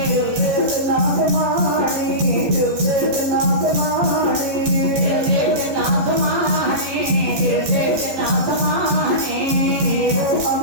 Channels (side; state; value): left; late; 14 ms